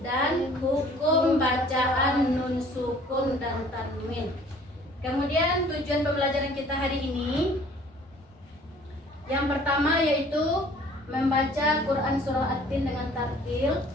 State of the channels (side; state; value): both; normal; correlation 0.53